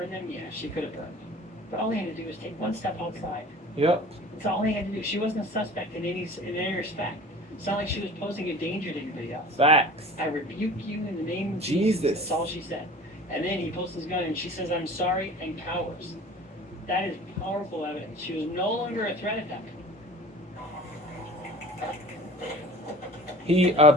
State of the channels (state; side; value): normal; both; correlation 0.43